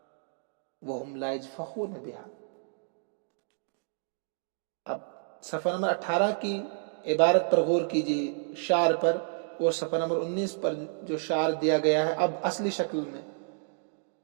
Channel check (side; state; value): left; silent; digital silence